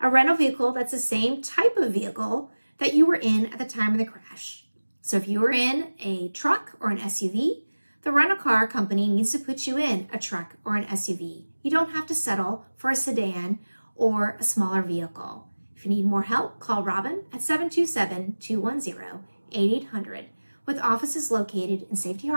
rental vehicle that's the same type of vehicle that you were in at the time of the crash. So if you were in a truck or an SUV, the rental car company needs to put you in a truck or an SUV. You don't have to settle for a sedan or a smaller vehicle. If you need more help, call Robin at 727-210-8800 with offices located in Safety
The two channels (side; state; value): both; inverted; correlation -1.00